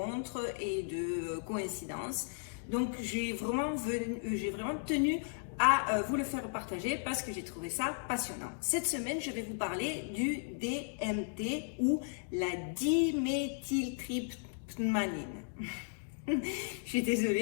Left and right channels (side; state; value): right; silent; digital silence